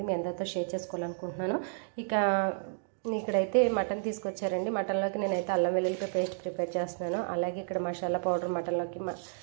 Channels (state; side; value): silent; left; digital silence